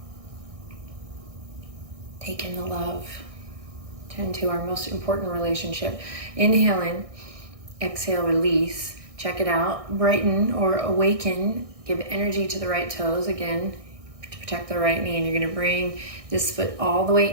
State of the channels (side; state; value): left; late; 1.6 ms